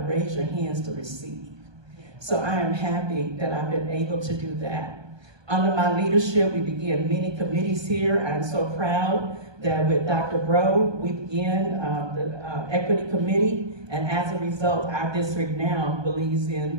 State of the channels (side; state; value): left; late; 1.2 ms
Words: your hands to receive. So I am happy that I've been able to do that. Under my leadership, we began many committees here. I'm so proud that with Dr. Bro, we began the Equity Committee, and as a result, our district now believes